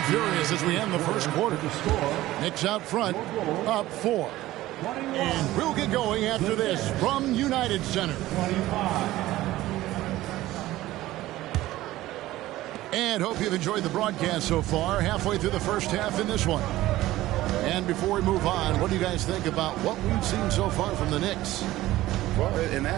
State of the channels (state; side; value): quieter; left; 16.2 dB